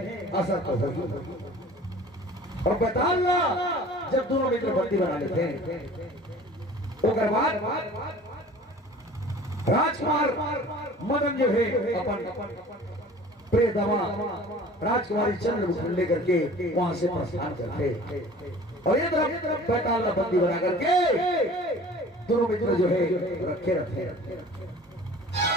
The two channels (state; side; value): normal; both; correlation 0.45